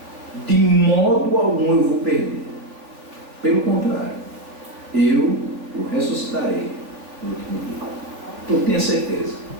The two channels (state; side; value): late; left; 3.4 ms